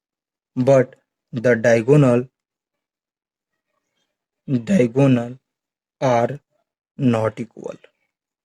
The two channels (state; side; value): identical; both; correlation 1.00